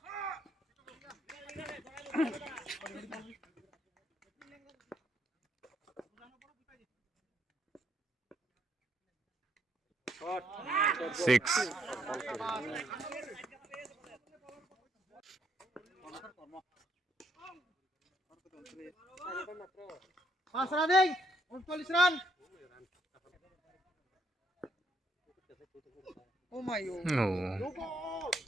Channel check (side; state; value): both; normal; correlation 0.72